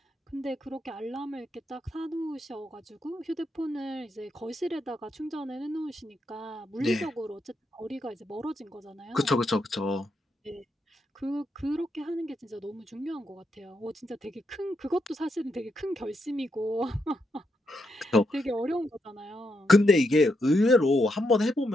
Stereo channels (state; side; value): normal; both; correlation 0.81